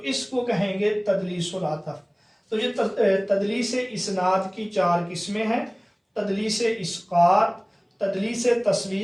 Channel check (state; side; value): identical; both; correlation 1.00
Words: اس کو کہیں گے تدلیس العطف۔ تو یہ تدلیس اسناد کی چار قسمیں ہیں، تدلیس اسقاط، تدلیس